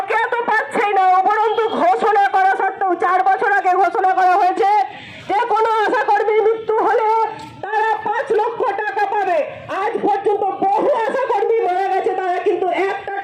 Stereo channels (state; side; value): identical; both; correlation 1.00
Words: তো পাচ্ছেই না, উপরন্তু ঘোষণা করা সত্ত্বেও 4 বছর আগে ঘোষণা করা হয়েছে যে কোনো আশা কর্মীর মৃত্যু হলে তারা 5 লক্ষ টাকা পাবে। আজ পর্যন্ত বহু আশা কর্মী মারা গেছে, তারা কিন্তু 1টা